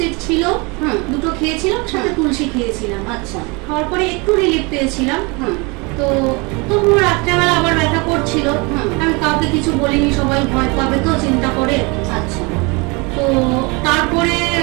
ছিল, দুটো খেয়েছিলাম, সাথে তুলসী খেয়েছিলাম। আচ্ছা। খাওয়ার পরে একটু রিলিফ পেয়েছিলাম। তো তবুও রাত্রেবেলা আবার ব্যথা করছিল। আমি কাউকে কিছু বলিনি, সবাই ভয় পাবে তো চিন্তা করে। আচ্ছা। তো তারপরে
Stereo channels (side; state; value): left; quieter; 28.2 dB